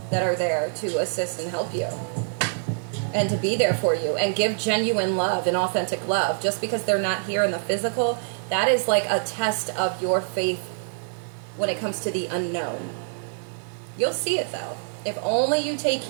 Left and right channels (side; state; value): left; silent; digital silence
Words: that are there to assist and help you. And to be there for you and give genuine love and authentic love. Just because they're not here in the physical, that is like a test of your faith when it comes to the unknown. You'll see it though. If only you take